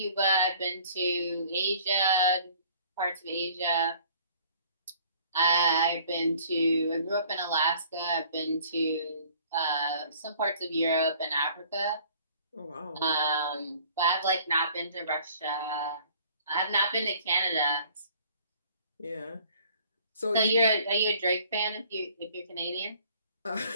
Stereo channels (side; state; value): both; inverted; correlation -0.54